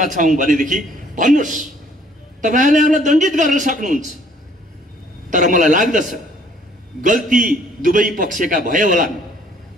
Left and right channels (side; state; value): both; normal; correlation 0.60